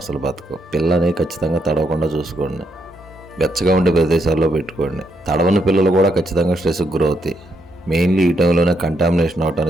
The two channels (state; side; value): normal; both; correlation 0.77